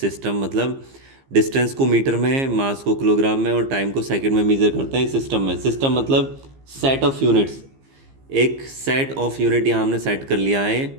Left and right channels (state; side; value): late; left; 15 ms